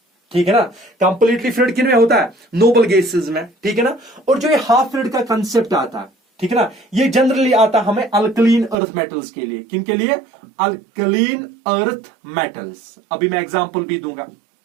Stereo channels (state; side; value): drops out; left; at 8.8 s